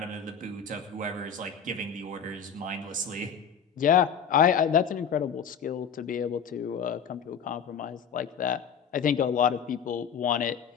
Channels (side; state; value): right; quieter; 7.1 dB